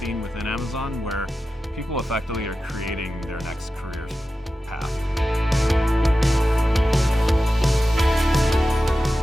within Amazon, where people effectively are creating their next career path.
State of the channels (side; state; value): both; normal; correlation 0.93